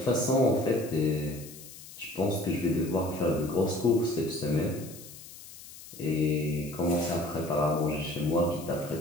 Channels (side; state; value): left; noise; hiss, 16 dB below the sound